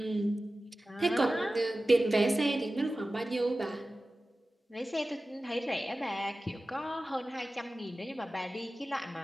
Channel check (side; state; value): both; normal; correlation 0.95